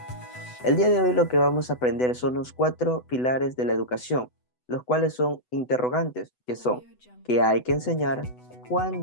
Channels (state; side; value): late; right; 8.0 ms